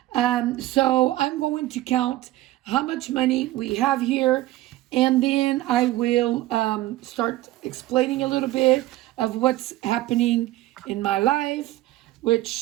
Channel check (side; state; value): left; quieter; 16.4 dB